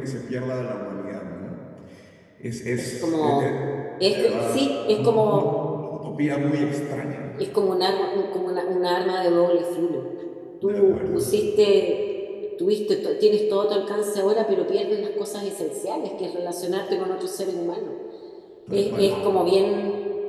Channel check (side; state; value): both; identical; correlation 1.00